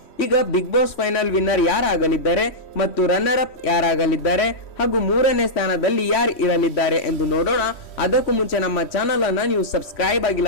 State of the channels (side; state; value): right; late; 3.1 ms